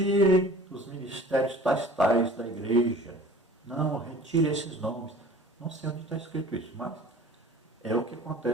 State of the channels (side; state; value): both; normal; correlation 0.45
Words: os ministérios tais da igreja. Não, retire esses nomes. Não sei onde está escrito isso, mas é o que